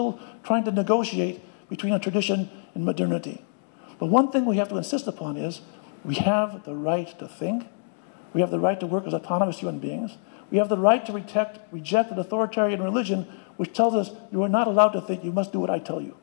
trying to negotiate between a tradition and modernity. But one thing we have to insist upon is we have the right to think. We have the right to work as autonomous human beings. We have the right to reject an authoritarian religion which tells us you are not allowed to think, you must do what I tell you.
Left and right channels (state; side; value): silent; right; digital silence